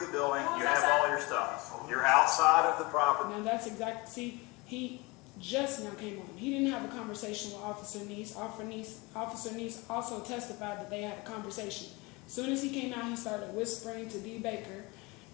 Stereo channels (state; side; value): quieter; right; 25.1 dB